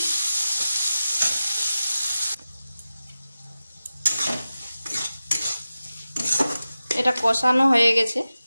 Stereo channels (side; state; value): both; inverted; correlation -0.94